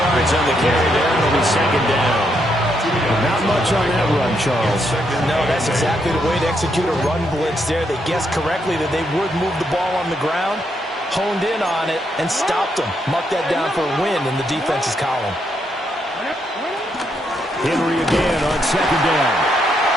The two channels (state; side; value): normal; both; correlation 0.78